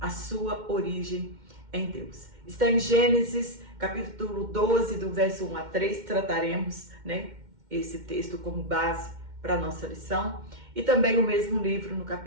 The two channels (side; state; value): left; late; 2.1 ms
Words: sua origem em Deus. Está em Gênesis, capítulo 12, do verso 1 a 3, trataremos esse texto como base para a nossa lição. E também o mesmo livro, no